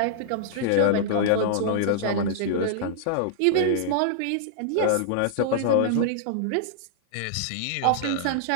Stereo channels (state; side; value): different; both; correlation -0.01